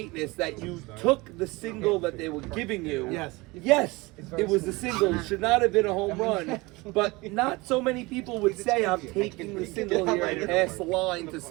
that you took the single that they were giving you. Yes, it was a single. It should not have been a home run. But not so many people would say I'm taking the single here and pass the line to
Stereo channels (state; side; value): quieter; left; 23.3 dB